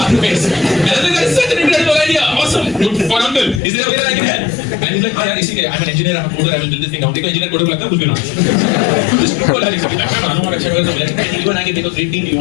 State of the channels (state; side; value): drops out; right; at 3.6 s